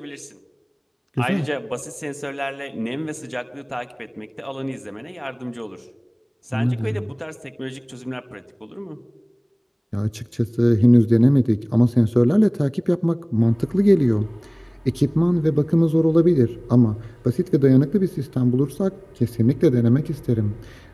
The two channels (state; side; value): identical; both; correlation 1.00